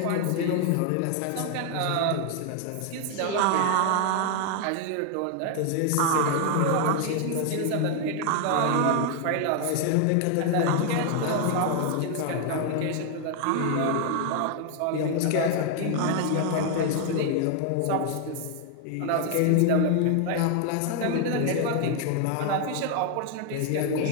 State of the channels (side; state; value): both; different; correlation 0.00